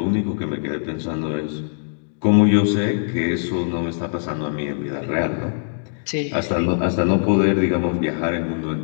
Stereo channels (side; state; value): right; silent; digital silence